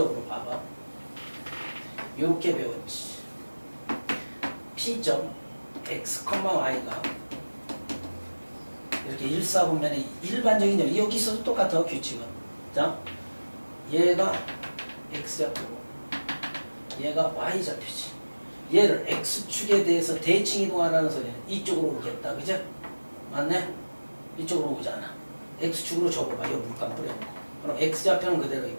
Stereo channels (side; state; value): both; inverted; correlation -1.00